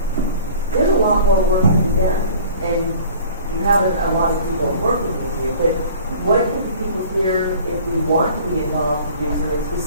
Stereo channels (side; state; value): both; inverted; correlation -0.46